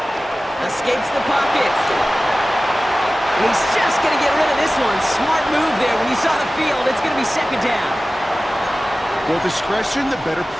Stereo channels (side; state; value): both; normal; correlation 0.97